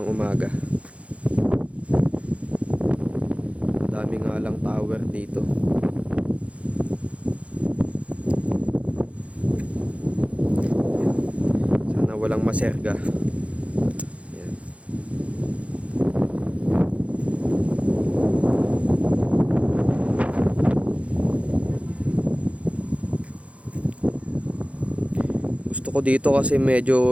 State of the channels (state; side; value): late; left; 0.063 ms